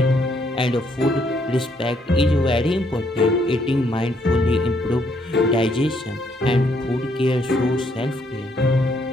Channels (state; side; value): normal; both; correlation 0.71